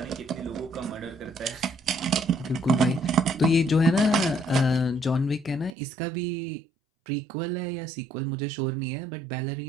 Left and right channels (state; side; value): drops out; left; at 5.8 s